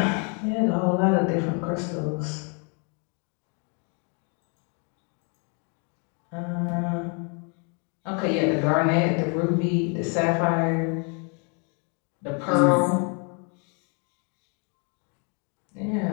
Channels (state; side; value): quieter; right; 37.2 dB